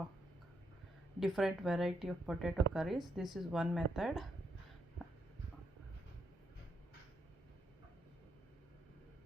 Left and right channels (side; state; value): both; normal; correlation 0.78